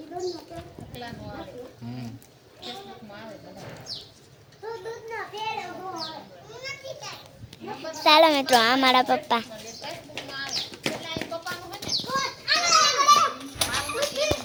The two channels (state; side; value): identical; both; correlation 1.00